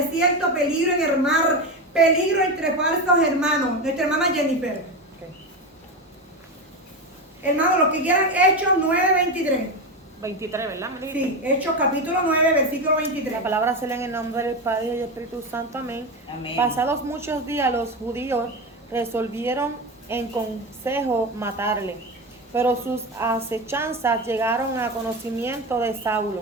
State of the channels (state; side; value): normal; both; correlation 0.18